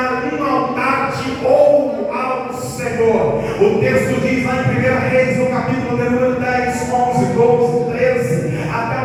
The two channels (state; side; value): identical; both; correlation 1.00